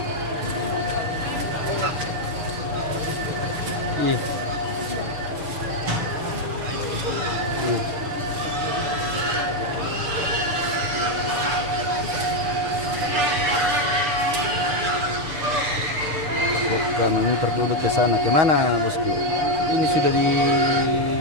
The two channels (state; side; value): late; left; 6.9 ms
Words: memutar dulu ke sana. Kemana bosku? Ini sudah di